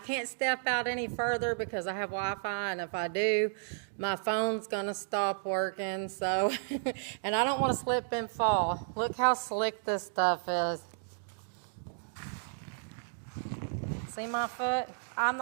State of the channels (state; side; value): silent; left; digital silence